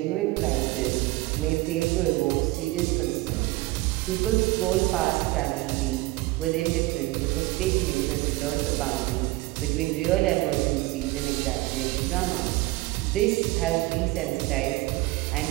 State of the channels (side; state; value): left; quieter; 20.4 dB